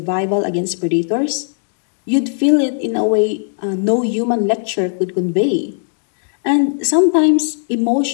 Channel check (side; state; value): right; silent; digital silence